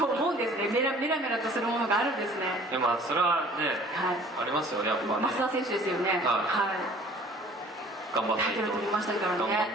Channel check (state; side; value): normal; both; correlation 0.51